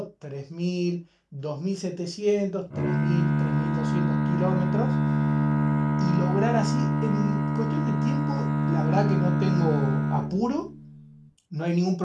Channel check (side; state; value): both; identical; correlation 1.00